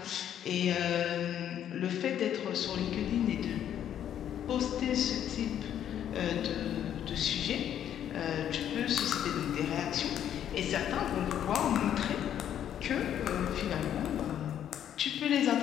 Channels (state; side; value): quieter; right; 10.2 dB